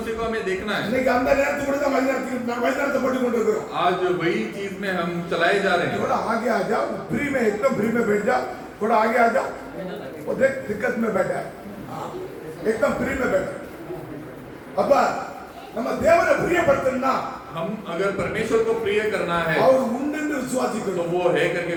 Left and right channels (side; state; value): both; identical; correlation 1.00